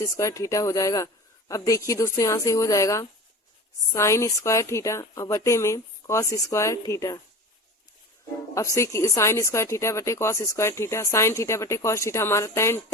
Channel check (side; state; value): both; normal; correlation 0.34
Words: स्क्वायर थीटा हो जाएगा। अब देखिए दोस्तों, यहाँ से हो जाएगा साइन स्क्वायर थीटा और बटे में कॉस स्क्वायर थीटा। अब से साइन स्क्वायर थीटा बटे cos square theta, sine theta बटे कॉस थीटा हमारा